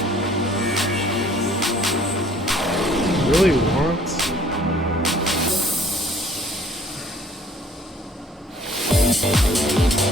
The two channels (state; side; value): normal; both; correlation 0.57